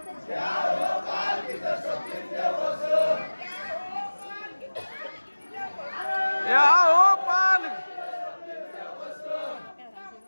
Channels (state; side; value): inverted; both; correlation -1.00